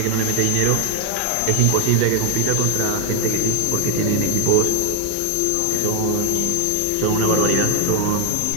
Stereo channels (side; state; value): both; different; correlation 0.00